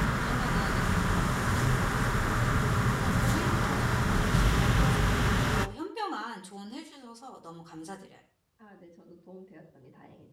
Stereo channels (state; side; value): identical; both; correlation 1.00